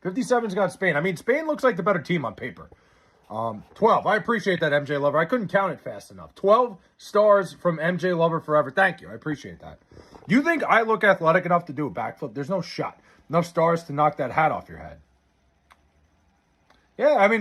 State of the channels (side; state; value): both; identical; correlation 1.00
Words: 57's got Spain. I mean, Spain looks like the better team on paper. 12. I appreciate that, MJ Lover. I couldn't count it fast enough. 12 stars from MJ Lover Forever. Thank you. I appreciate that. You think I look athletic enough to do a backflip? There's no shot. Enough stars to knock that hat off your head. Yeah, I